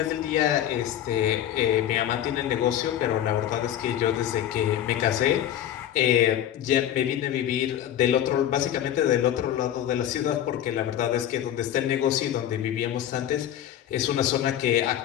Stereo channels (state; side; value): quieter; right; 11.1 dB